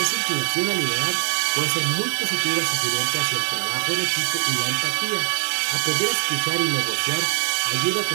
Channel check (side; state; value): left; silent; digital silence